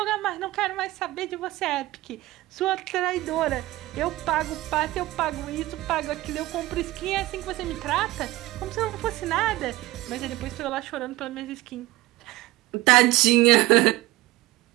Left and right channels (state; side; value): quieter; left; 18.1 dB